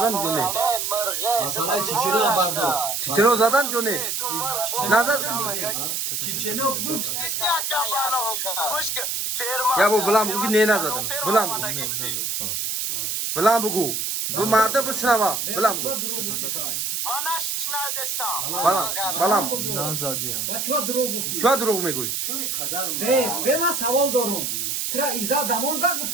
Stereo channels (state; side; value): noise; right; hiss, 1 dB below the sound